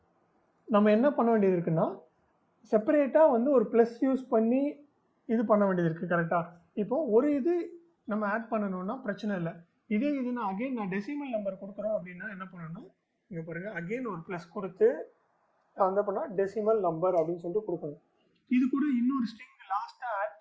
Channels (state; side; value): identical; both; correlation 1.00